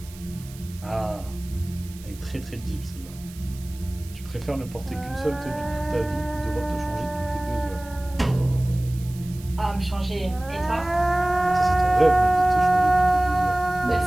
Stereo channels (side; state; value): right; noise; hiss, 20 dB below the sound